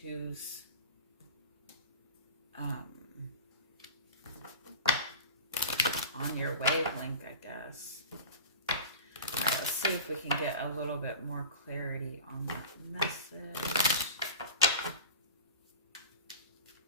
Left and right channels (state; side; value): inverted; both; correlation -0.34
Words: who's on your wavelength, I guess. All right, let's see if we can get a little bit more clarity on that message.